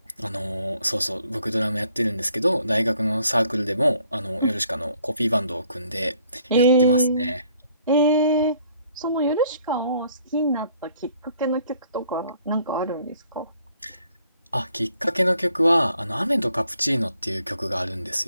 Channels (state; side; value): inverted; both; correlation -0.64